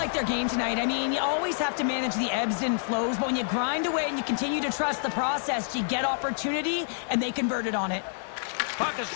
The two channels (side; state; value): right; silent; digital silence